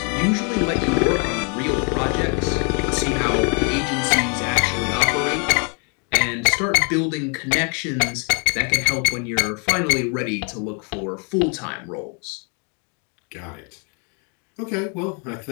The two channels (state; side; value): quieter; right; 37.0 dB